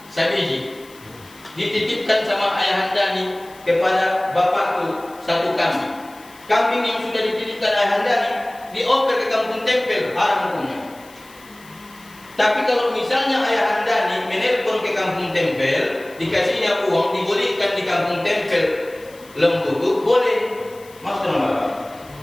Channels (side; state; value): left; noise; hiss, 24 dB below the sound